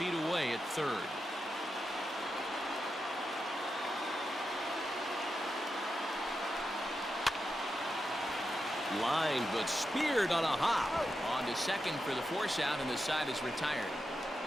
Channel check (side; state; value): both; normal; correlation 0.88